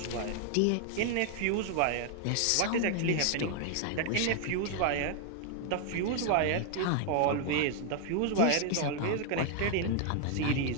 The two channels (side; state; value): both; different; correlation 0.00